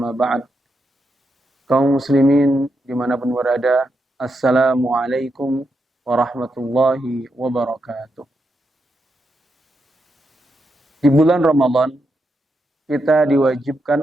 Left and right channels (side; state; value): both; normal; correlation 0.84